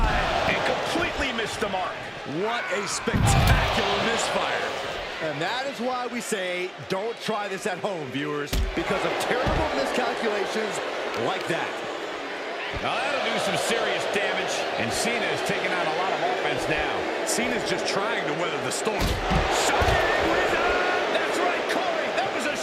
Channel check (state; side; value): identical; both; correlation 1.00